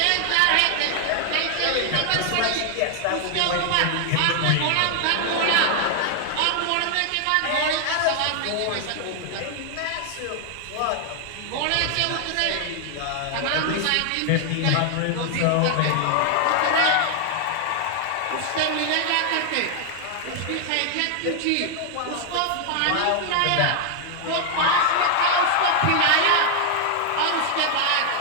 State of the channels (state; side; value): different; both; correlation 0.00